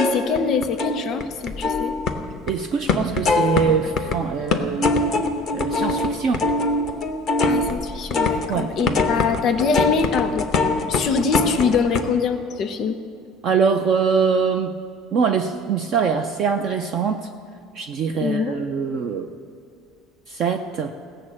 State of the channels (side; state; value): both; normal; correlation 0.44